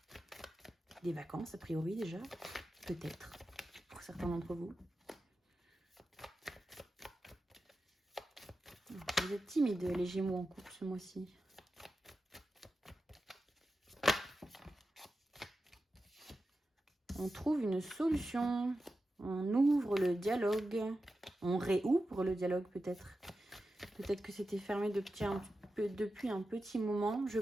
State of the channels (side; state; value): both; normal; correlation 0.92